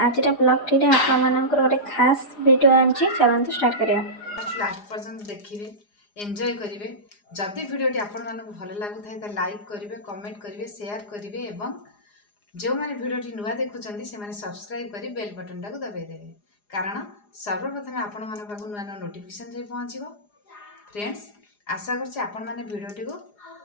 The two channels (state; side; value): late; right; 4.9 ms